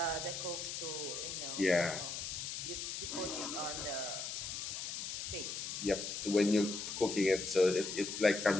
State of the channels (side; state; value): left; noise; hiss, 5 dB below the sound